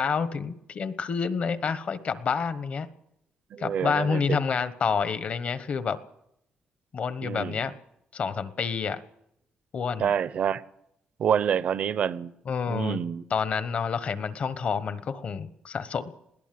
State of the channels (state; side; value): normal; both; correlation 0.70